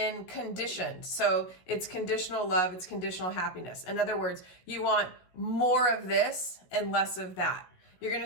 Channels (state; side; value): late; right; 16 ms